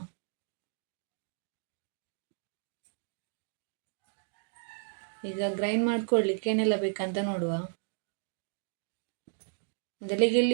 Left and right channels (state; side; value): silent; left; digital silence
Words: ಈಗ ಗ್ರೈಂಡ್ ಮಾಡ್ಕೊಳ್ಳಿಕ್ಕೆ ಏನೆಲ್ಲ ಬೇಕಂತ ನೋಡುವ. ಮೊದಲಿಗೆ